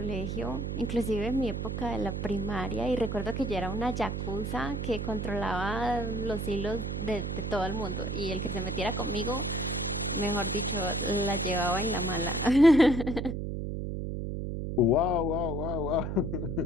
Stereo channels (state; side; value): noise; right; hum, 3 dB below the sound